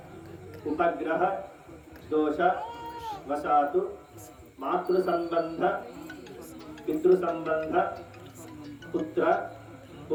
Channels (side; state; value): both; identical; correlation 1.00